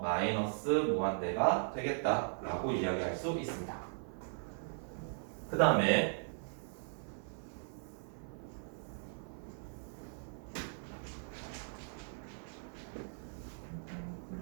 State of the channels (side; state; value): left; silent; 52 dB below the other